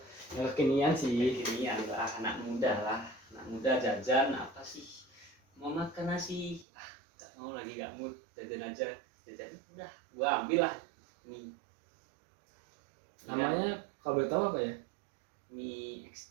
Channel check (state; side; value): drops out; left; at 6.7 s